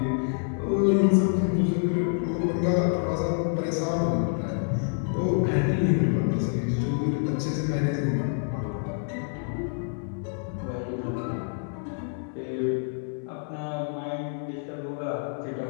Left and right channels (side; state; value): right; silent; 60 dB below the other